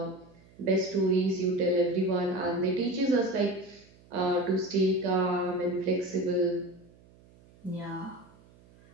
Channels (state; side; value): noise; right; hum, 27 dB below the sound